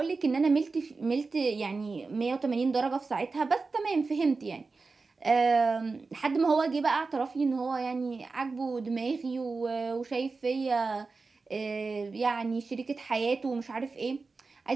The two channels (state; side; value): quieter; left; 4.1 dB